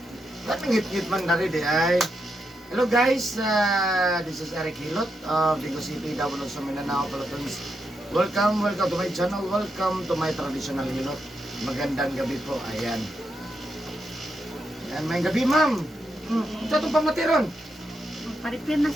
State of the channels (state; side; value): normal; both; correlation 0.83